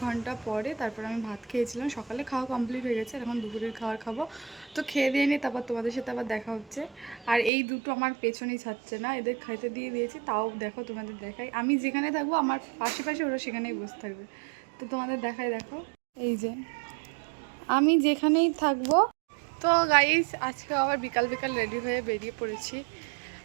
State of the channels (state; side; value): drops out; left; at 7.5 s